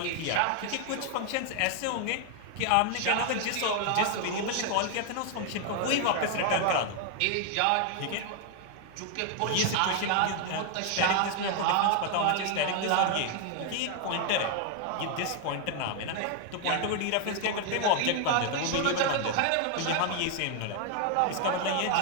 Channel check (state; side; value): different; both; correlation 0.00